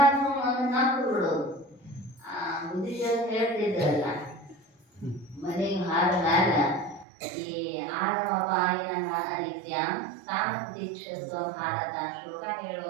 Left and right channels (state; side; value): drops out; left; at 7.1 s